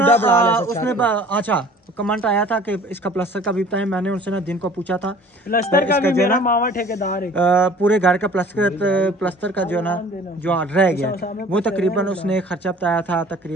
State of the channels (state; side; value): normal; both; correlation 0.48